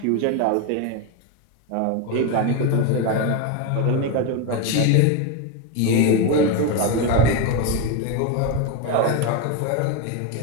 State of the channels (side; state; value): both; different; correlation 0.03